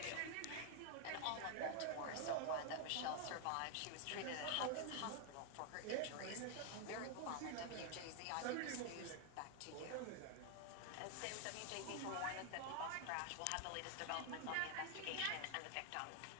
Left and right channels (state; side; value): different; both; correlation 0.00